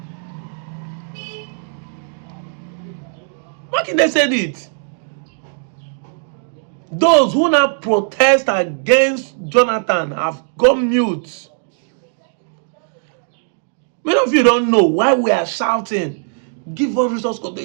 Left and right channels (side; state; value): left; silent; digital silence